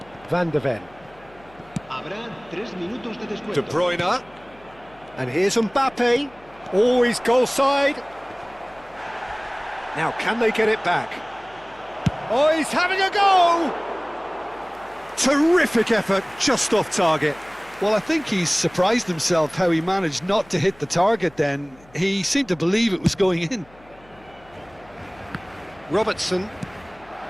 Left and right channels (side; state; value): left; noise; hum, 26 dB below the sound